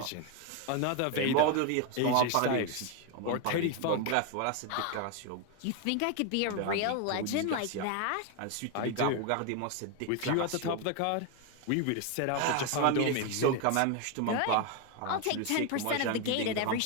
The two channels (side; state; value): both; different; correlation 0.01